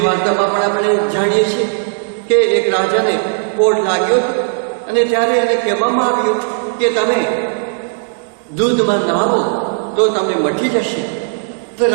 વાર્તામાં પણ આપણે જાણીએ છીએ કે એક રાજાને કોઢ લાગ્યો હતો અને ત્યારે એને કહેવામાં આવ્યું કે તમે દૂધમાં નાહો તો તમને મટી જશે. તો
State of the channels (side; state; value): left; silent; digital silence